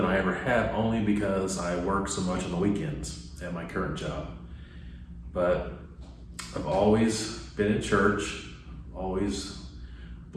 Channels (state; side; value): identical; both; correlation 1.00